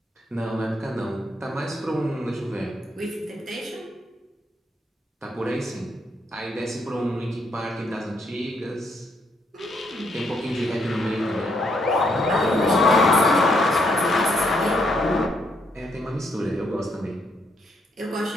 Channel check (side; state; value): both; normal; correlation 0.74